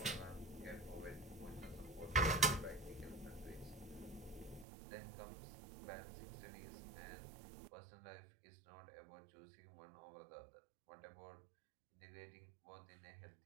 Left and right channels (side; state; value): left; drops out; at 4.7 s